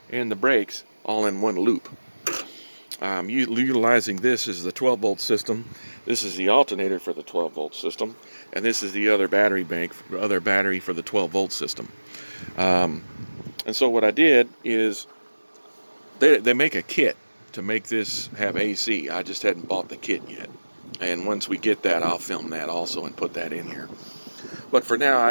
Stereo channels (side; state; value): both; inverted; correlation -1.00